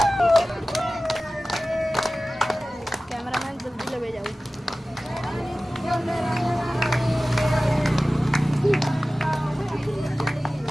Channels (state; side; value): normal; both; correlation 0.96